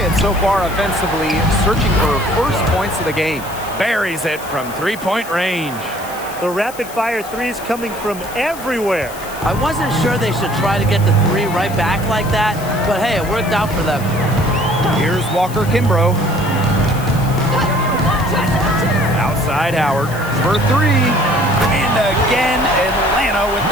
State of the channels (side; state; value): left; noise; hiss, 15 dB below the sound